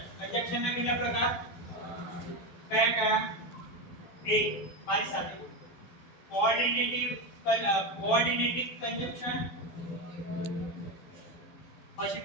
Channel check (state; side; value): late; right; 12 ms